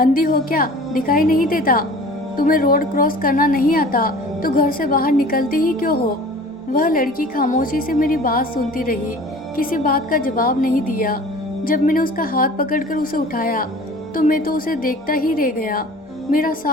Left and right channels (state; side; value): normal; both; correlation 0.44